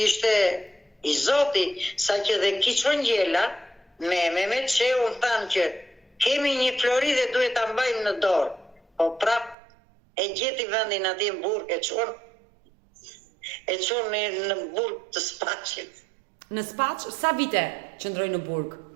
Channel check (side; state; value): left; drops out; at 9.6 s